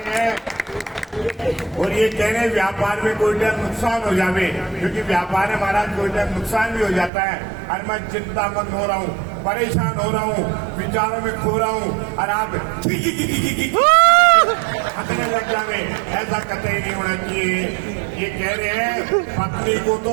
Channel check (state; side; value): drops out; left; at 7.1 s